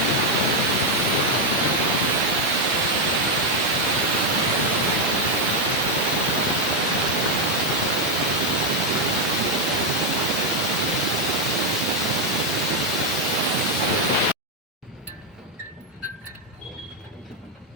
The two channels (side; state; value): both; normal; correlation 0.02